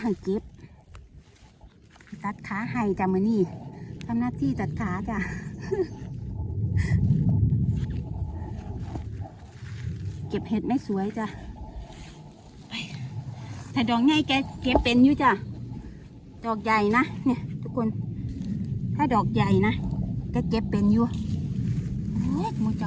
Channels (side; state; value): both; identical; correlation 1.00